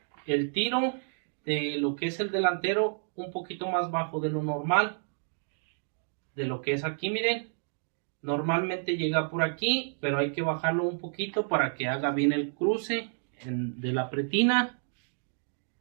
el tiro de lo que es el delantero un poquito más bajo de lo normal, de lo que es aquí, miren. Normalmente llega por aquí, pero hay que bajarlo un poquito para que haga bien el cruce de la pretina.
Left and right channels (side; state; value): left; silent; digital silence